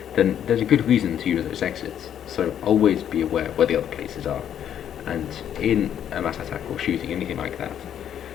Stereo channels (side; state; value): right; quieter; 9.7 dB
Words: then there's a good reason to use those exits. So always be aware where the other places are, and in a mass attack or shooting, anything like that,